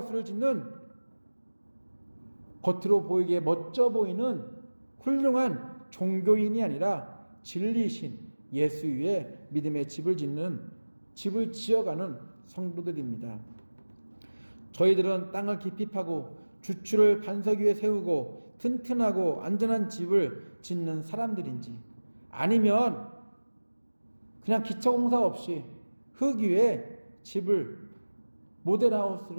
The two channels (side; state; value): both; inverted; correlation -1.00